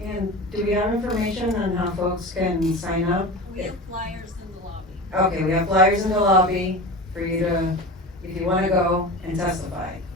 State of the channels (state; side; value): normal; both; correlation 0.30